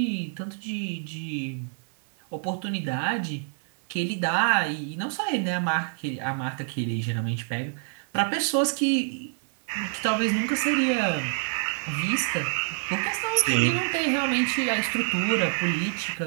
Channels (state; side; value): silent; left; 60 dB below the other